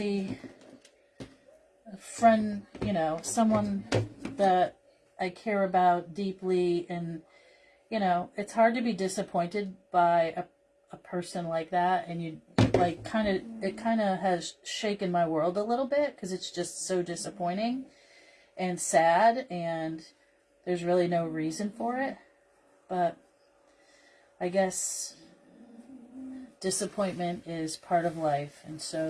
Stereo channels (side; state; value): both; identical; correlation 1.00